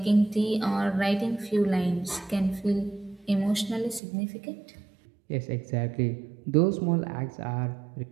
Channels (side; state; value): left; drops out; at 4.0 s